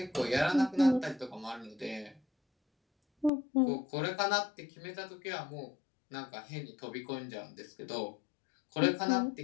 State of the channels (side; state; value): right; drops out; at 3.3 s